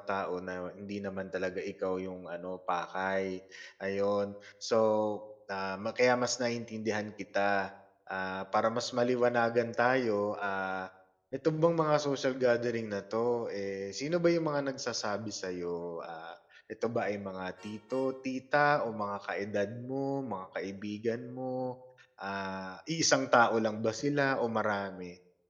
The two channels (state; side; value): identical; both; correlation 1.00